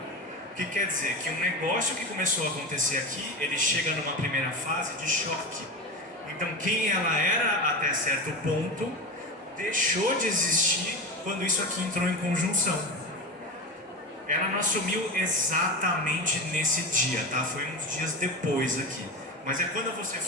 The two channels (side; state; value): both; normal; correlation 0.23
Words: O que quer dizer? Que um negócio que começou a acontecer aqui, ele chega numa primeira fase de choque. Então quem ela era até certo ponto, deixou de existir quando isso aqui entrou em conjunção. Ela não assumiu exatamente nesse dia, tá? Foi uns dias depois aqui. Mas é quando você